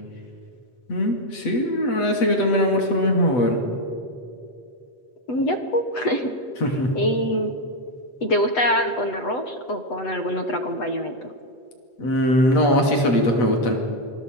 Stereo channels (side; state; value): right; late; 8.1 ms